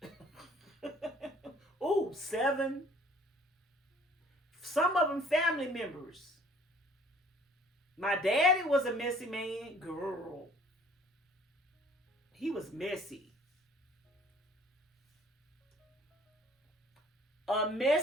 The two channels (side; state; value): both; normal; correlation 0.55